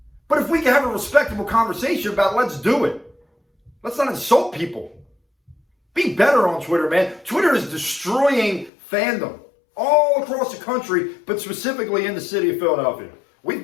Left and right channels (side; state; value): right; drops out; at 8.7 s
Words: But if we can have a respectable conversation about it, let's do it. Let's not insult people. Be better on Twitter, man. Twitter is destroying fandom all across the country, but specifically in the city of Philadelphia. We've